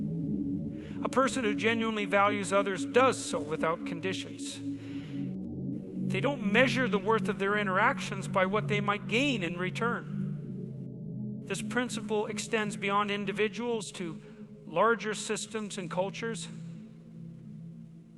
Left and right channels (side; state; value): both; identical; correlation 1.00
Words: A person who genuinely values others does so without conditions. They don't measure the worth of their interactions by what they might gain in return. This principle extends beyond individuals to larger systems and cultures.